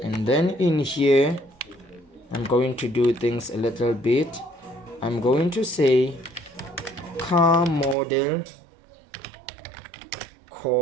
then in here I'm going to do things a little bit. I'm going to say car model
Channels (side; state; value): left; drops out; at 8.0 s